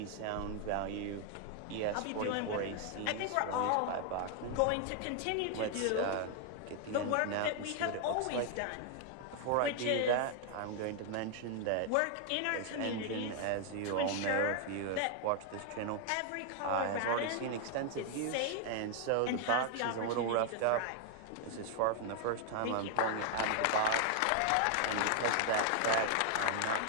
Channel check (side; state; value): both; different; correlation 0.00